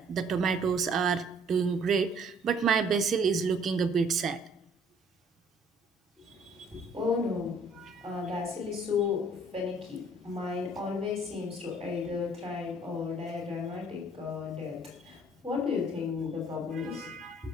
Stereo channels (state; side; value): normal; both; correlation 0.58